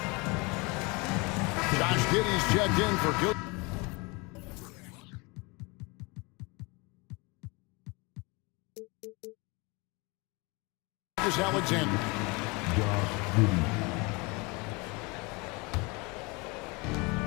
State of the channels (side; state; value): right; quieter; 27.6 dB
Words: Josh Giddey's checked in for Gilgeous-Alexander.